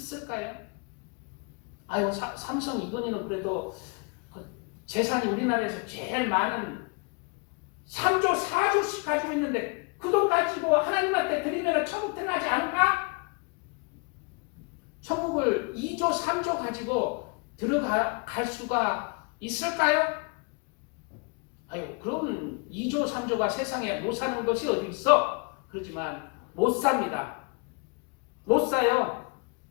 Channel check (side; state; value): right; quieter; 33.1 dB